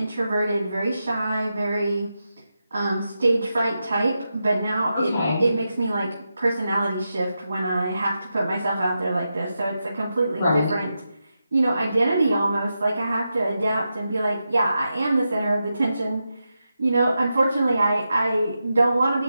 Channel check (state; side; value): inverted; both; correlation -0.88